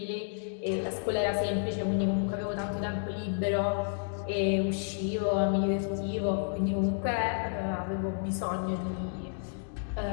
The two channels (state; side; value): silent; right; digital silence